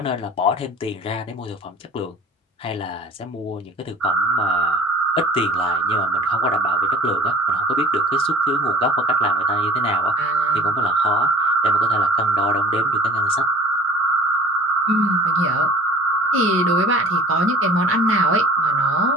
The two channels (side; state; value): both; normal; correlation 0.45